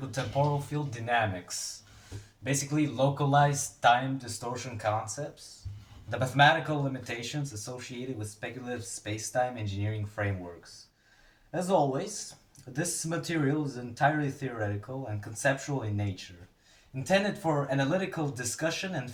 temporal field dynamics, basically localized time distortion concepts, the mathematical limitations associated with speculative spacetime engineering frameworks. As always, this material is entirely theoretical and conceptual in nature, intended for analytical discussion and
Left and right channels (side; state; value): both; identical; correlation 1.00